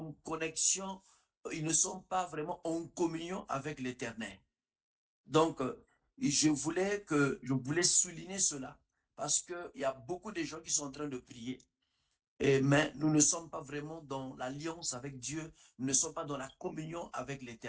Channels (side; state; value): both; identical; correlation 1.00